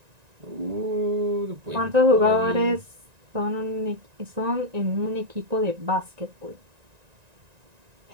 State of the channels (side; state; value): left; late; 1.9 ms